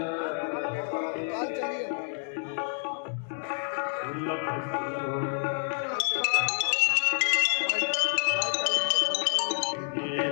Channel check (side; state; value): right; silent; digital silence